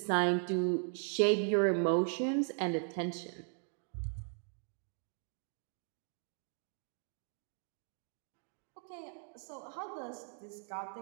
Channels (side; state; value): left; silent; 52 dB below the other